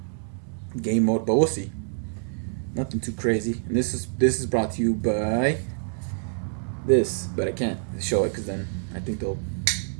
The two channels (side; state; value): left; silent; digital silence